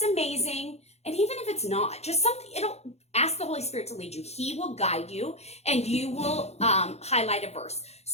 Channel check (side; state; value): right; late; 0.31 ms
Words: amazing. And even if it's not, just something, it'll ask the Holy Spirit to lead you. He will guide you, and you will highlight a verse.